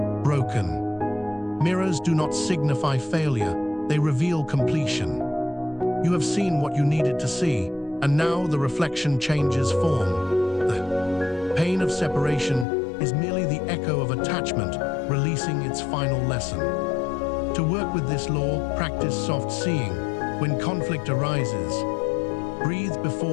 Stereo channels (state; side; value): drops out; right; at 12.7 s